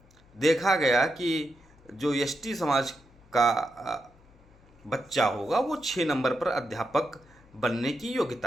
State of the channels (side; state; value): left; noise; hum, 28 dB below the sound